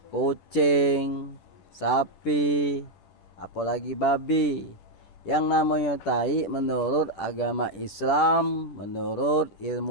kucing, sapi, apalagi babi. Yang namanya tai menurut agama Islam, menurut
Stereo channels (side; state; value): right; late; 10 ms